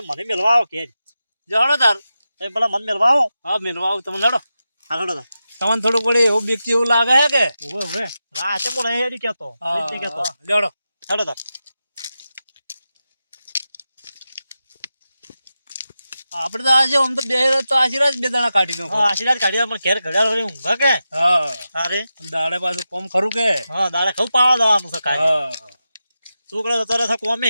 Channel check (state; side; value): inverted; both; correlation -0.91